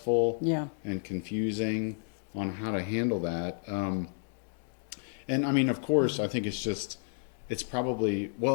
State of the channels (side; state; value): right; silent; digital silence